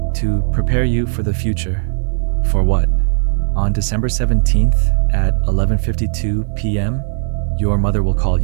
To prepare you for the future." "For what?" "On December 17th at 11:52 p.m., your mother will call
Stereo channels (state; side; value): silent; left; 55 dB below the other